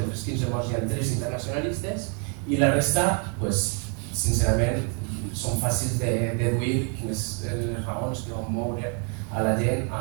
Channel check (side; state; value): left; quieter; 39.5 dB